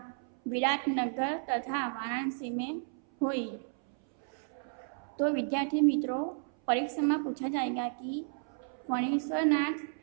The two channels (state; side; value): silent; left; 56 dB below the other